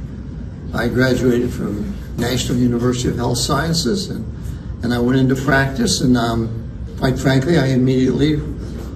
I graduated from National University of Health Sciences, and I went into practice, and quite frankly, I immediately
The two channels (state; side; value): identical; both; correlation 1.00